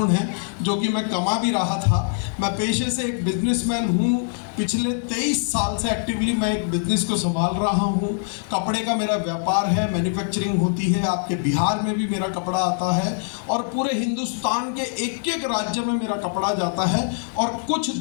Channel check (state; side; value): silent; right; 63 dB below the other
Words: है, जो कि मैं कमा भी रहा था। मैं पेशे से एक बिजनेसमैन हूँ। पिछले 23 साल से एक्टिवली मैं एक बिज़नेस को संभाल रहा हूँ। कपड़े का मेरा व्यापार है, मैन्युफैक्चरिंग होती है। आपके बिहार में भी मेरा कपड़ा आता है और पूरे हिंदुस्तान के एक एक राज्य में मेरा कपड़ा जाता है और कुछ